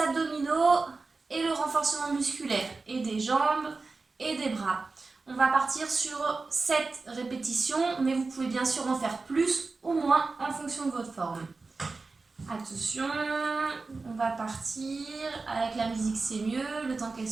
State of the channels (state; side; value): quieter; left; 3.9 dB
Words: et le renforcement musculaire, et des jambes et des bras. On va partir sur 7 répétitions, mais vous pouvez bien sûr en faire plus ou moins en fonction de votre forme. Attention, on va partir. Avec la musique, c'est mieux, le temps qu'elle